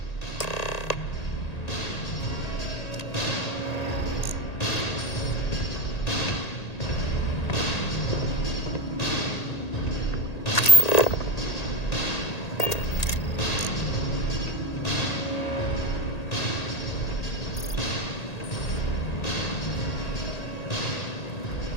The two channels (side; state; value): right; late; 1.8 ms